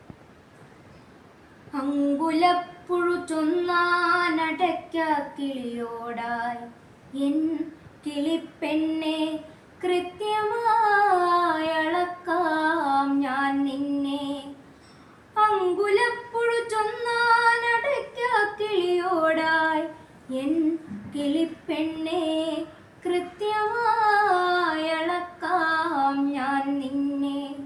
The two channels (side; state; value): both; identical; correlation 1.00